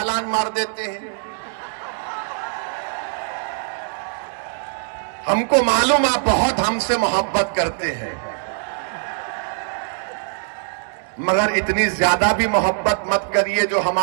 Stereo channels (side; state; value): left; silent; 64 dB below the other